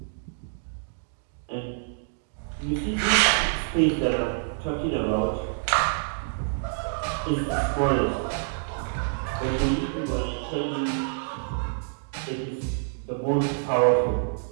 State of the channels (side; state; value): left; silent; digital silence